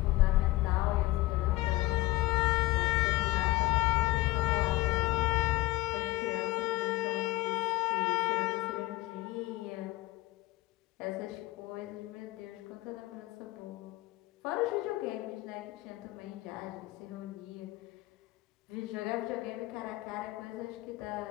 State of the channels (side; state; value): right; quieter; 18.4 dB